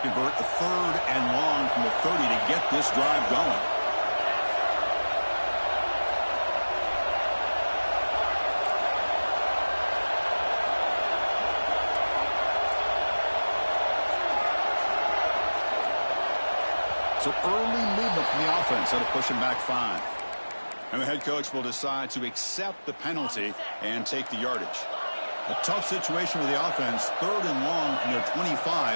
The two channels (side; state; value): both; inverted; correlation -1.00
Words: a 3rd and long from the 30 to get this drive going. So early movement from the offense. That'll push him back 5. And the head coach will decide to accept the penalty and take the yardage. A tough situation for the offense. 3rd and long from their